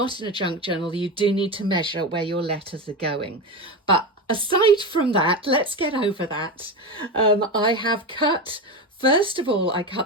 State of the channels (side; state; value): both; normal; correlation 0.20